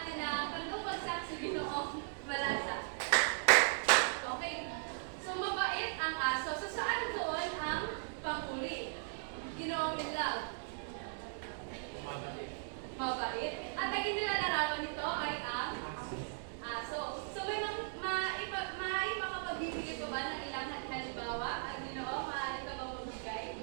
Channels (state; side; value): silent; left; digital silence